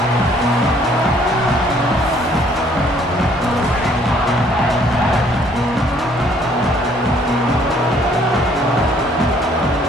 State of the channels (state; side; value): normal; both; correlation 0.62